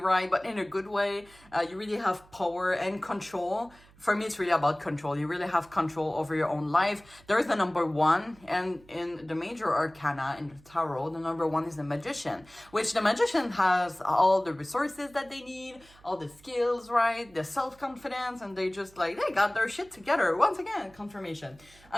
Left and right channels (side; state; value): right; noise; hum, 26 dB below the sound